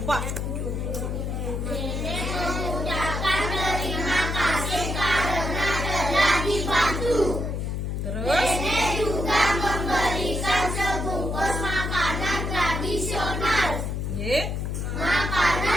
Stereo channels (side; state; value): left; noise; hum, 2 dB below the sound